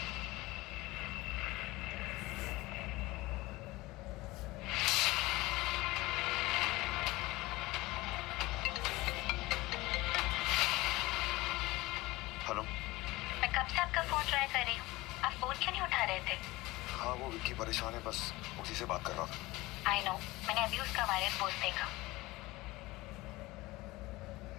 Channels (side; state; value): right; quieter; 20.3 dB